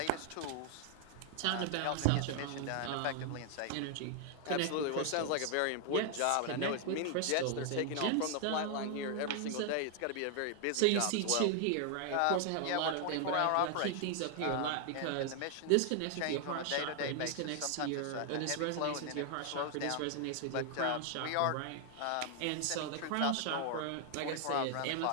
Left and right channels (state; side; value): different; both; correlation 0.00